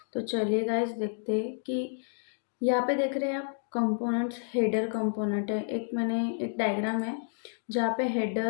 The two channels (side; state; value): right; silent; digital silence